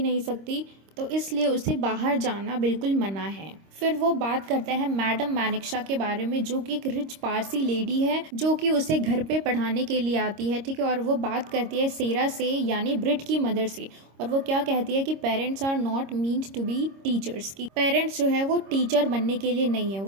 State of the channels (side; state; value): left; late; 26 ms